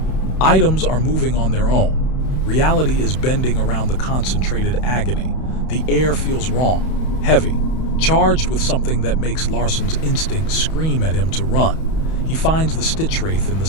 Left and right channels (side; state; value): right; late; 31 ms